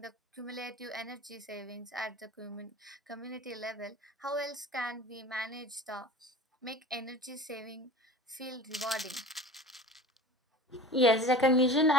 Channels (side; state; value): both; normal; correlation 0.39